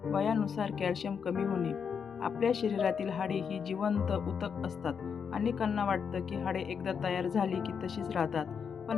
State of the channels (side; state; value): right; quieter; 6.7 dB